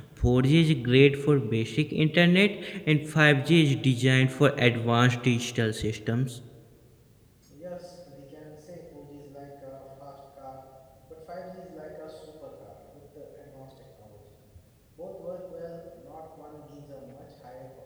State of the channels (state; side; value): identical; both; correlation 1.00